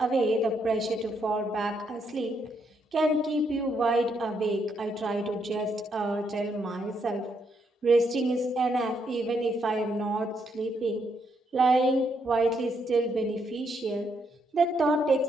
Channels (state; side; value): normal; both; correlation 0.76